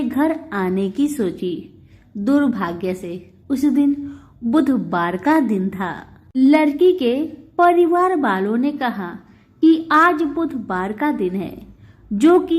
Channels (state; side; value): identical; both; correlation 1.00